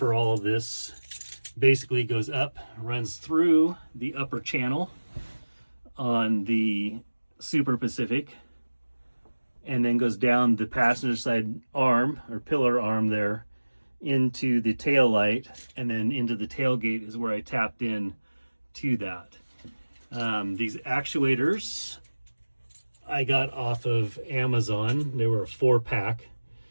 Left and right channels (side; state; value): both; inverted; correlation -1.00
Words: all of this basically goes up, runs through the upper channel on the Super Pacific, and then goes down the passenger side arm or pillar arm there into the tail light, and then into the tailgate is where I tapped in to that. These actuators I got off of Amazon. They were a 4-pack.